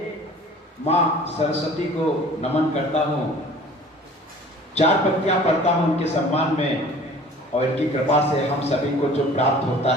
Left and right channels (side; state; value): both; normal; correlation 0.47